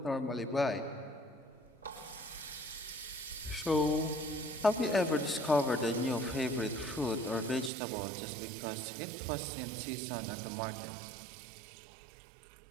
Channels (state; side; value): drops out; left; at 7.7 s